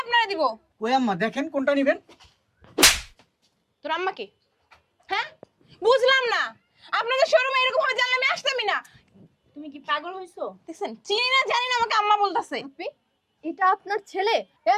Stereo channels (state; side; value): identical; both; correlation 1.00